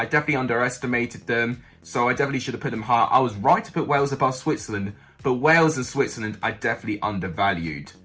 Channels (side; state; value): both; identical; correlation 1.00